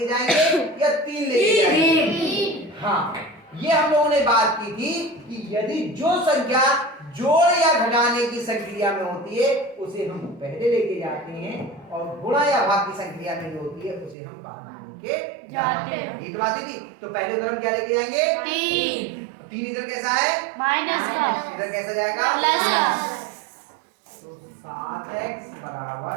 जाएंगे या 3 लेके जाएंगे। हाँ, ये हम लोगों ने बात की थी कि यदि जो संख्या जोड़ या घटाने की संक्रिया में होती है उसे हम पहले लेके जाते हैं, और गुणा या भाग की संक्रिया में जो होती है उसे हम बाद में लेके जाते हैं। ये बात थी। तो पहले उधर हम क्या लेके जाएंगे? 3 इधर कैसा है? माइनस। इधर कैसा जाएगा? प्लस। तो 7x बराबर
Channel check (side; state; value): left; drops out; at 14.2 s